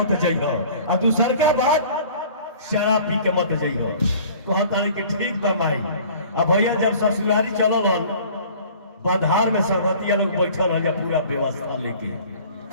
जाइयो, आ दूसर का बात शराब पी के मत जाइयो। कहता कि ठीक बा माई। अब भैया जब ससुरारी चलल बधार में संगतिया लोग बैठल है पूरा व्यवस्था लेके,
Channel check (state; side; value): inverted; both; correlation -0.48